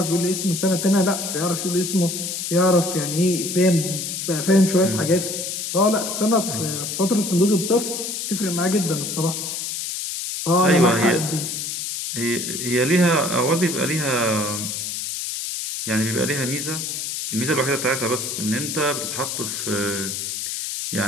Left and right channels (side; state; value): left; noise; hiss, 4 dB below the sound